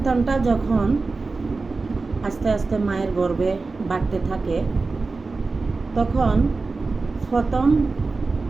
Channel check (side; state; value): left; quieter; 3.9 dB